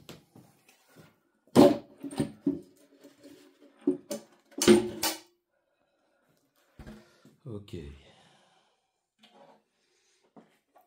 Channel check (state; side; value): identical; both; correlation 1.00